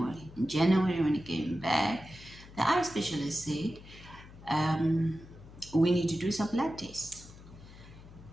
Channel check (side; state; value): left; noise; hum, 18 dB below the sound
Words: when it came back, the eye specialist said, we need to do some blood tests.